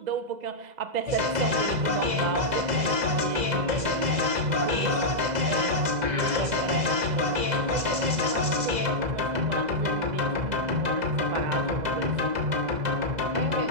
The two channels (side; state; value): left; late; 2.0 ms